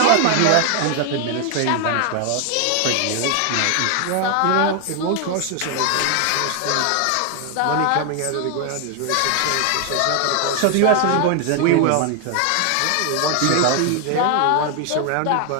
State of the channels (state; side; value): different; both; correlation 0.00